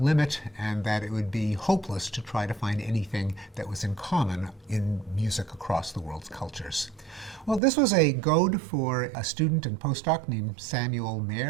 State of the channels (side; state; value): left; drops out; at 7.6 s